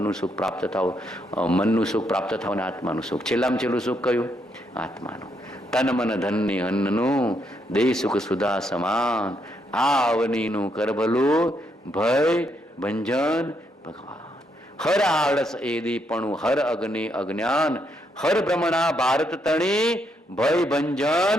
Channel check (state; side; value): normal; both; correlation 0.77